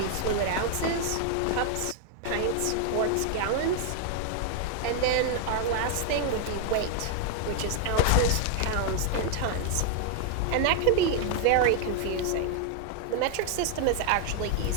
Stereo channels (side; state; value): both; different; correlation 0.00